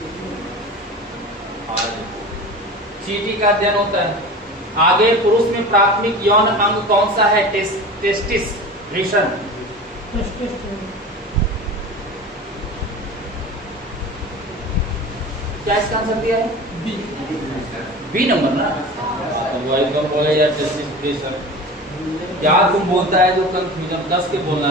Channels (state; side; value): normal; both; correlation 0.34